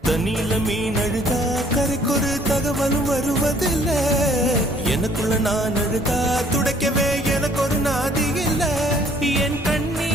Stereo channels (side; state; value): both; normal; correlation 0.60